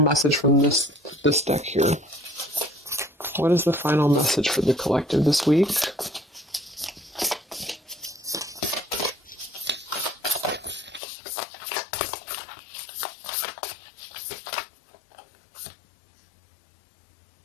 from this deck here. What is the final message for the collective this week?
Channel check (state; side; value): drops out; right; at 11.0 s